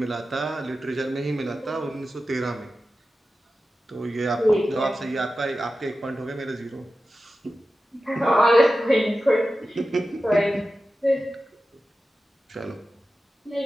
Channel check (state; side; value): normal; both; correlation 0.93